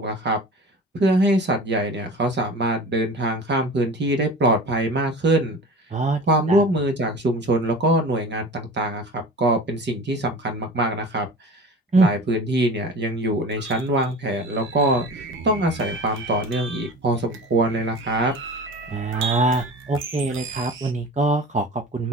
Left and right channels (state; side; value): normal; both; correlation 0.36